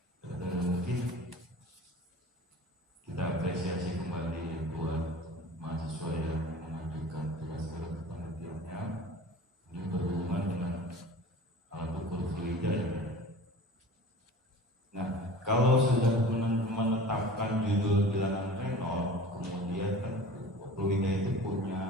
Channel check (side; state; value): both; normal; correlation 0.40